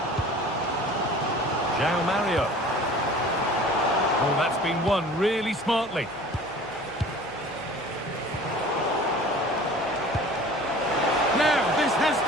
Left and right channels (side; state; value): left; noise; hum, 27 dB below the sound